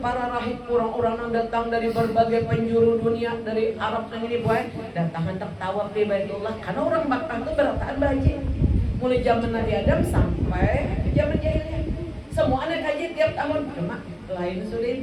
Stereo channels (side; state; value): both; identical; correlation 1.00